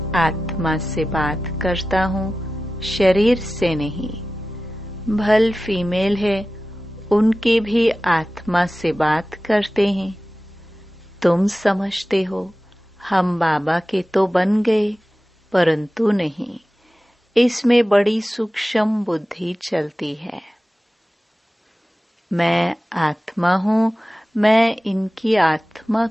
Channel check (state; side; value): normal; both; correlation 0.95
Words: आत्मा से बात करता हूँ, शरीर से नहीं। भल फीमेल है, उनके भी आत्मा से बात करते हैं। तुम समझते हो हम बाबा के तो बन गए, परंतु नहीं। इसमें बड़ी सूक्ष्म बुद्धि चलती है। मैं आत्मा हूँ, मैं इनकी आत्मा